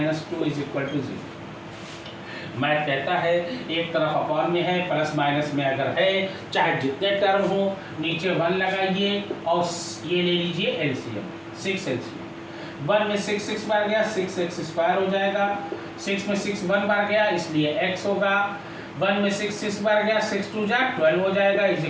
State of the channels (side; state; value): both; identical; correlation 1.00